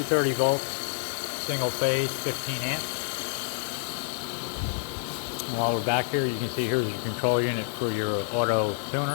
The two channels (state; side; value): silent; right; digital silence